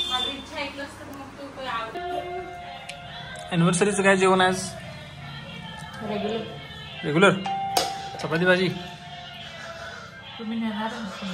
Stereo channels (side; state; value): both; identical; correlation 1.00